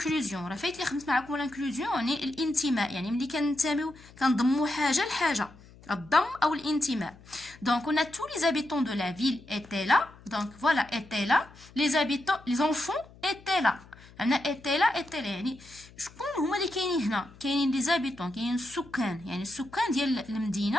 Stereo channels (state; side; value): noise; left; hum, 23 dB below the sound